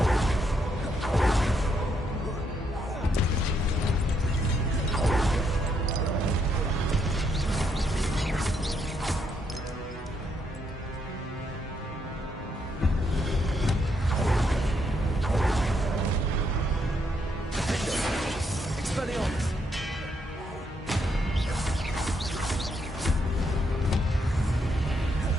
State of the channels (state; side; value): normal; both; correlation 0.76